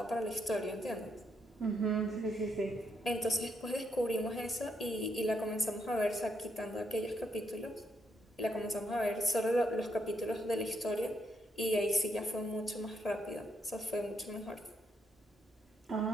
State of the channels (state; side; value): normal; both; correlation 0.77